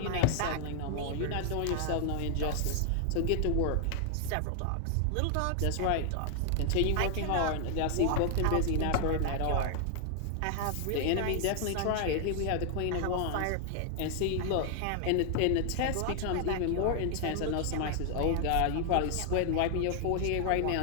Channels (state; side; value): different; both; correlation 0.00